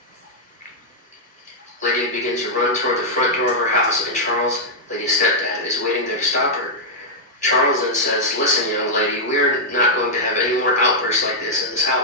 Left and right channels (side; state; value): both; normal; correlation -0.05